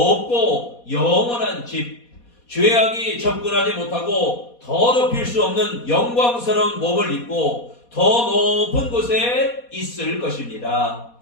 영원한 집, 죄악이 접근하지 못하고 더럽힐 수 없는 영광스러운 몸을 입고 더 높은 곳에 있을 것입니다.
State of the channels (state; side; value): late; right; 4.2 ms